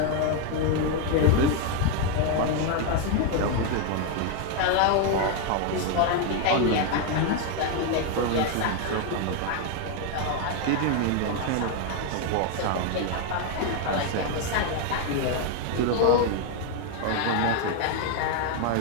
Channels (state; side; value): different; both; correlation 0.01